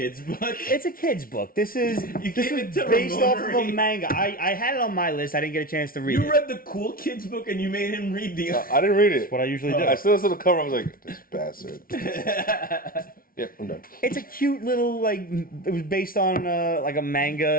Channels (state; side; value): late; right; 0.42 ms